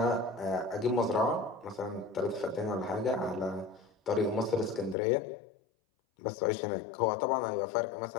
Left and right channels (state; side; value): drops out; right; at 5.0 s